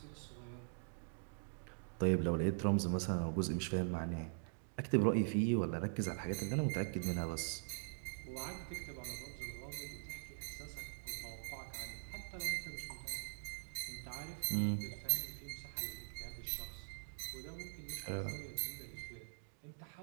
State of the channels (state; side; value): silent; left; digital silence